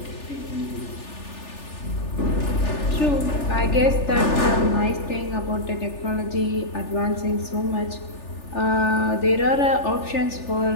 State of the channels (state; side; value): late; right; 3.4 ms